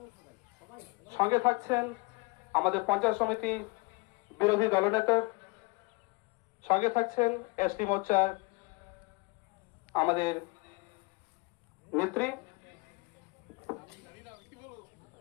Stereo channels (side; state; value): right; quieter; 27.7 dB